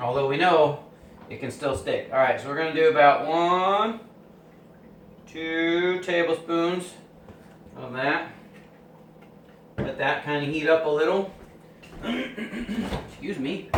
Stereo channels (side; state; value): both; identical; correlation 1.00